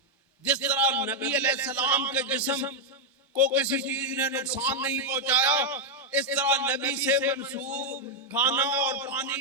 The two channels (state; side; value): normal; both; correlation -0.01